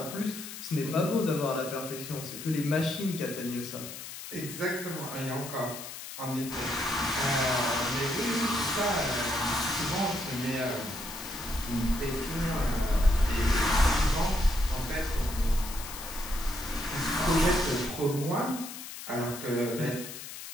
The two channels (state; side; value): noise; left; hiss, 10 dB below the sound